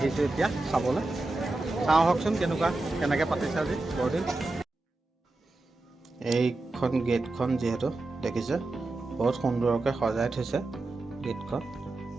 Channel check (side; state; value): left; quieter; 3.0 dB